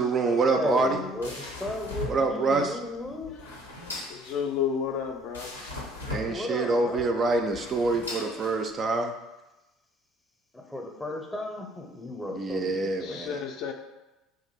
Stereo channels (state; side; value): normal; both; correlation 0.59